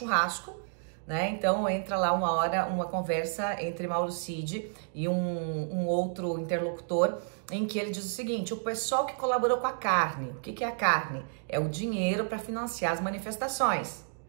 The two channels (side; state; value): left; silent; digital silence